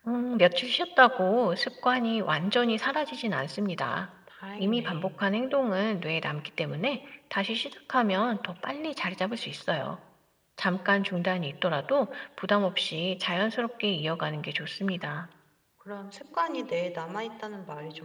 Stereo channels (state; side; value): identical; both; correlation 1.00